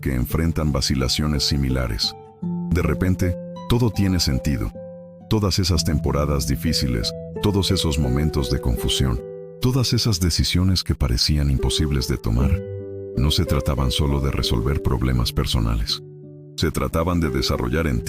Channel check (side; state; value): both; identical; correlation 1.00